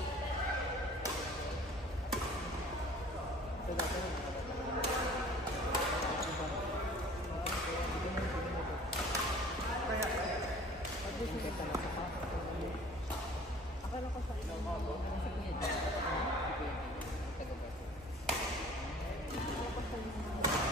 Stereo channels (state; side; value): normal; both; correlation 0.49